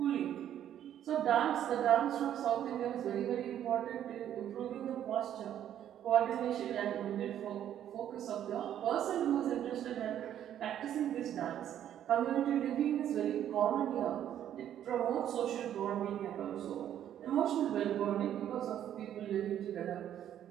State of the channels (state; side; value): quieter; left; 10.6 dB